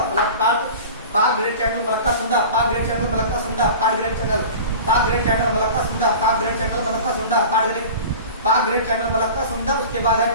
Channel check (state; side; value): inverted; both; correlation -0.37